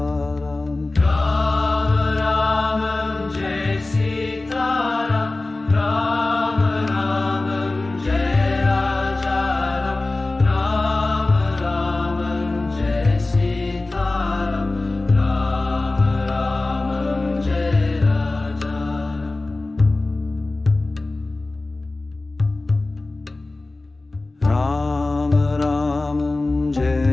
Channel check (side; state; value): right; quieter; 3.1 dB